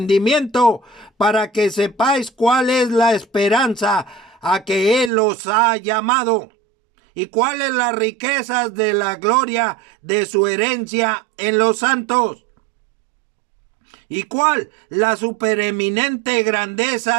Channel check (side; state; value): left; drops out; at 5.1 s